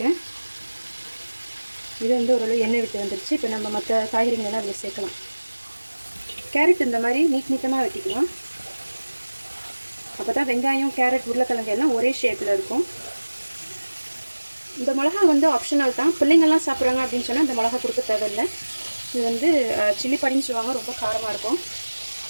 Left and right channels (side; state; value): both; inverted; correlation -1.00